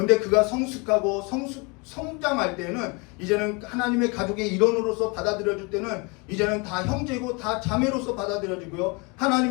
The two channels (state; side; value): quieter; right; 29.3 dB